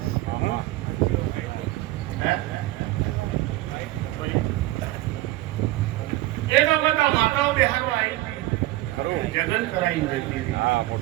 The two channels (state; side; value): quieter; left; 17.3 dB